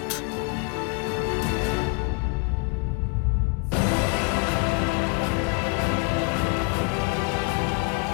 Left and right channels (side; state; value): right; quieter; 31.8 dB